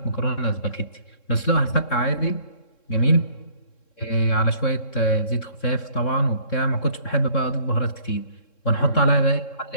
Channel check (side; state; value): right; late; 3.7 ms